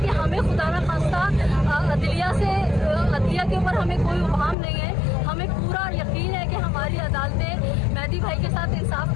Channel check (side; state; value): right; drops out; at 4.5 s